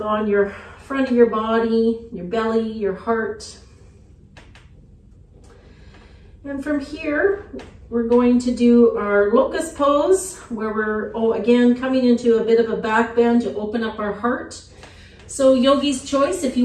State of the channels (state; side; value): identical; both; correlation 1.00